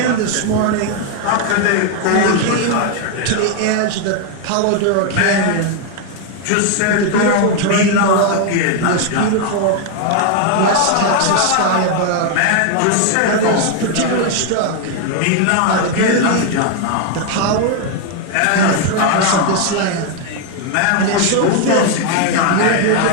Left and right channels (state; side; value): different; both; correlation 0.01